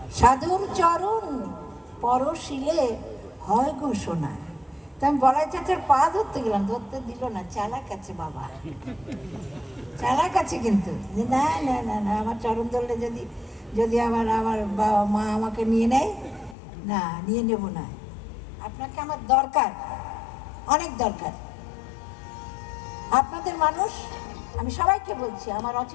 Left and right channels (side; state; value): right; drops out; at 16.6 s